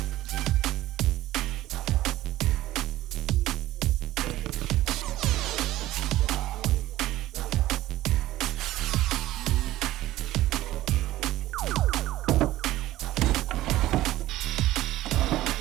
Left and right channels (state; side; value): quieter; left; 15.6 dB